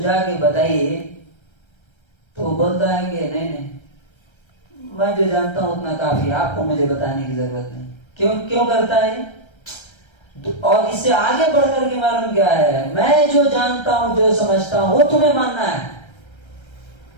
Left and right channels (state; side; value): late; right; 1.3 ms